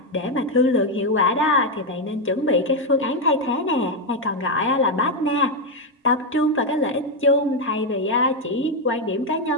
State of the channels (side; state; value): both; normal; correlation 0.04